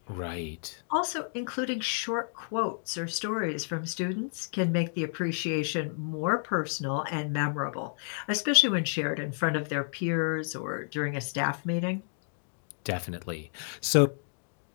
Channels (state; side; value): silent; right; digital silence